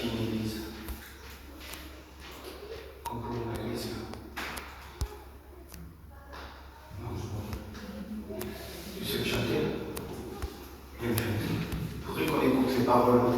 une église. Comme pour une église. Non, tu sais le chanter? Bien fait. Il faudrait qu'on écoute les paroles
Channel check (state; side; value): identical; both; correlation 1.00